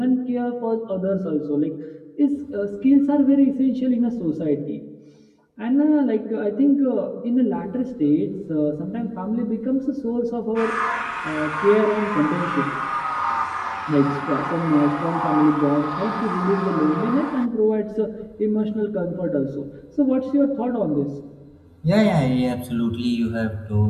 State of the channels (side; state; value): both; identical; correlation 1.00